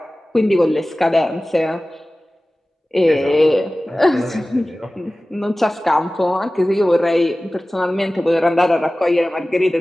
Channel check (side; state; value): both; normal; correlation 0.97